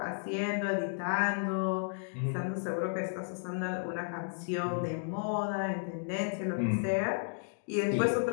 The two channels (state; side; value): silent; right; digital silence